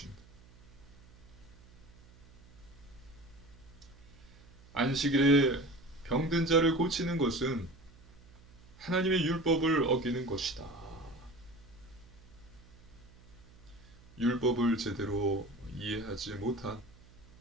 안식일에 병든 자를 고치는 것은 하나님의 율법을 어기는 것이다. 율법을 제대로 이해하지 못한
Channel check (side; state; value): right; noise; hum, 24 dB below the sound